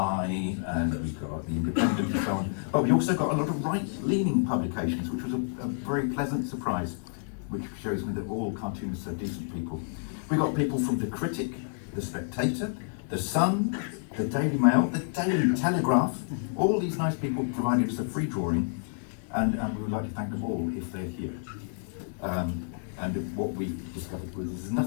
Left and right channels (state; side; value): silent; right; digital silence